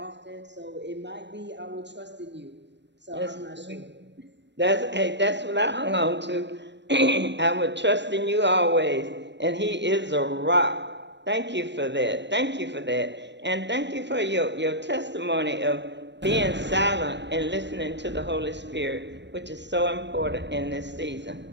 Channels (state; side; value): late; left; 0.52 ms